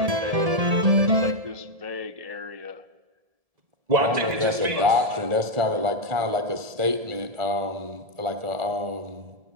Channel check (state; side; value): late; left; 1.7 ms